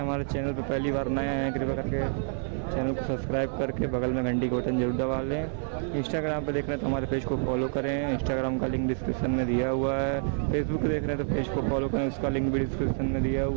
चैनल पर पहली बार नए हैं, कृपया करके चैनल को सब्सक्राइब करके बगल में घंटी का बटन जरूर दबा लें। इंस्टाग्राम पर देख रहे हैं तो हमारे पेज को फॉलो करें, इंस्टाग्राम का लिंक डिस्क्रिप्शन में दिया हुआ है। फेसबुक देख रहे हैं तो पेज को फॉलो करें, उसका लिंक भी डिस्क्रिप्शन में दिया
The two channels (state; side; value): silent; left; 55 dB below the other